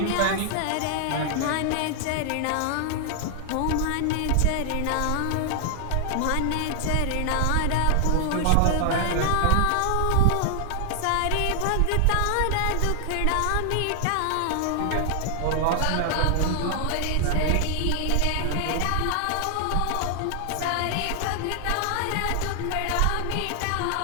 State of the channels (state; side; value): different; both; correlation -0.01